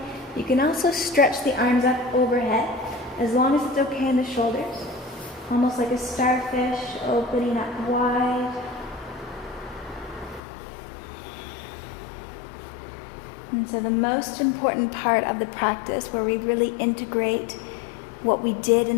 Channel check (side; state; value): right; drops out; at 10.4 s